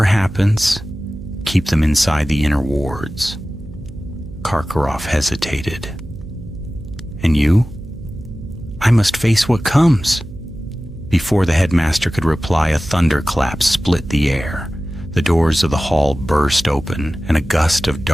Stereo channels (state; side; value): noise; right; hum, 15 dB below the sound